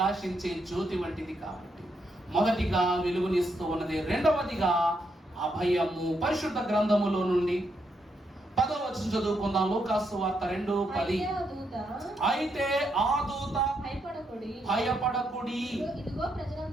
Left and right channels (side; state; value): both; normal; correlation 0.79